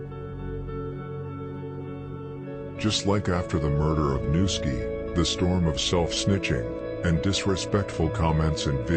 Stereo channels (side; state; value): both; identical; correlation 1.00